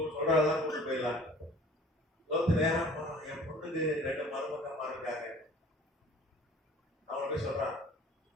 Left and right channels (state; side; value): normal; both; correlation 0.49